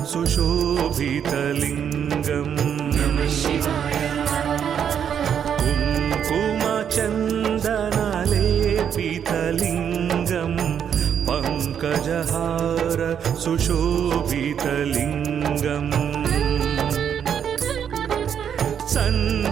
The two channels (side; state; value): left; quieter; 8.3 dB